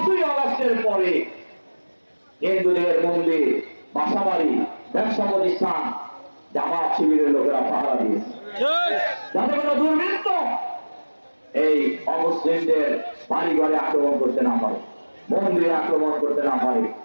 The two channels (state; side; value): inverted; both; correlation -1.00